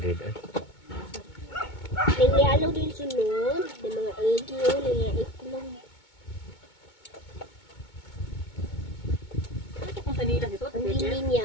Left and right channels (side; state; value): right; late; 2.2 ms